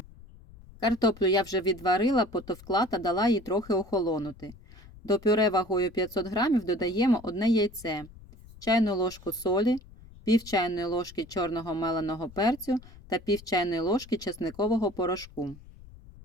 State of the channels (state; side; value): noise; left; rumble, 20 dB below the sound